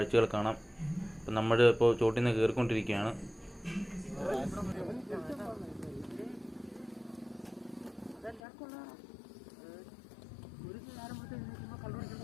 കാണാം. ഇപ്പം നമ്മൾ ഇപ്പോൾ ചോട്ടിൽ നിന്ന് കയറിക്കൊണ്ടിരിക്കുകയാണ്.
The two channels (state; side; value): drops out; right; at 8.4 s